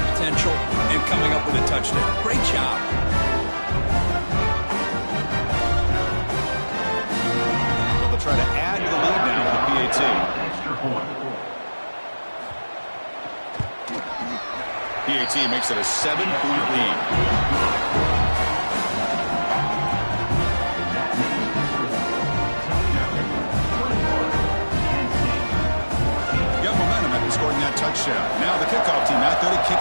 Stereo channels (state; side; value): inverted; both; correlation -1.00